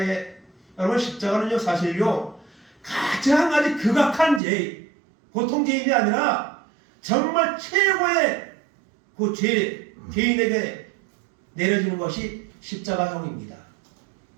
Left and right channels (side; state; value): left; drops out; at 4.4 s